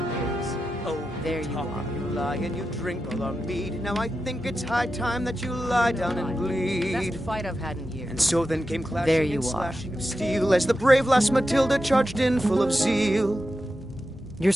years. "Oh, There you talk are. and you lie lie and you drink all our mead. Now I think it's high time that you lie down and bleed. Best fight I've had in years. And so then came clashing There you and are. slashing of steel as the brave lass Matilda charged in full of zeal. You're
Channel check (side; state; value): both; normal; correlation 0.90